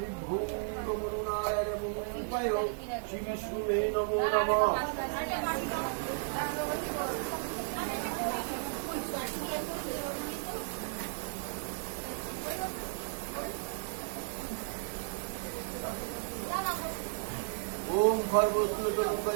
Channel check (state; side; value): silent; left; digital silence